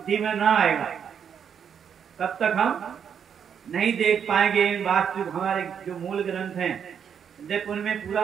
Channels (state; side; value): quieter; left; 7.8 dB